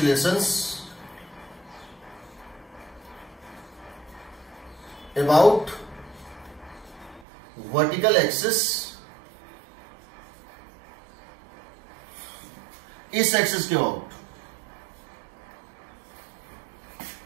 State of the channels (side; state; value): left; drops out; at 7.2 s